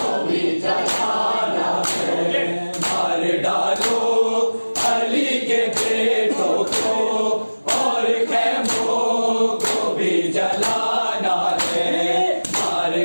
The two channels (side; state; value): both; inverted; correlation -1.00